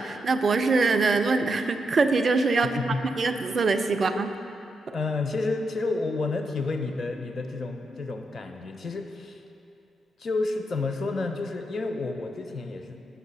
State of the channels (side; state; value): both; normal; correlation 0.83